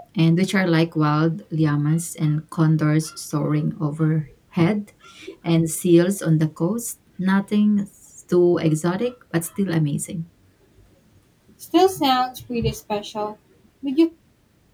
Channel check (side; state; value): both; identical; correlation 1.00